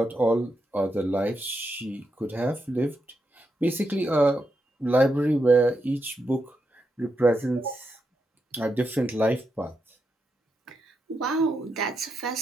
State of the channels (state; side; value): normal; both; correlation 0.84